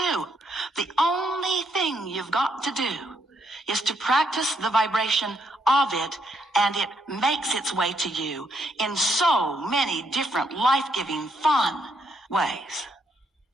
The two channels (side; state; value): both; normal; correlation 0.75